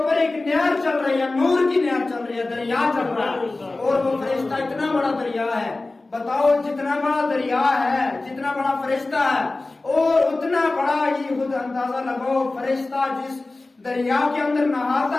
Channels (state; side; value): quieter; right; 3.2 dB